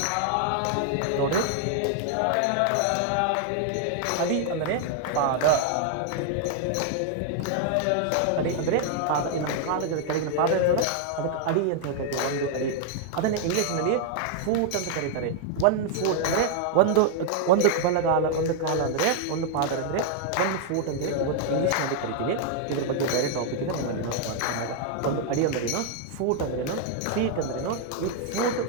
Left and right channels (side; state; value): both; different; correlation 0.00